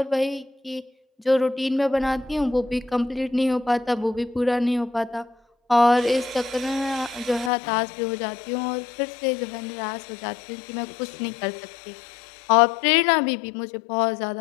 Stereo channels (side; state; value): right; drops out; at 7.5 s